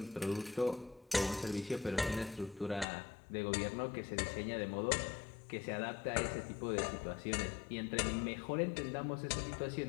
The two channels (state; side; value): drops out; right; at 2.9 s